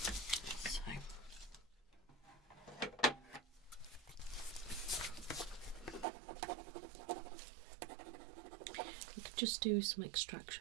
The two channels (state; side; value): drops out; left; at 6.1 s